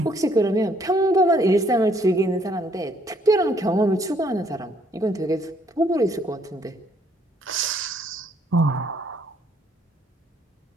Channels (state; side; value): normal; both; correlation 0.66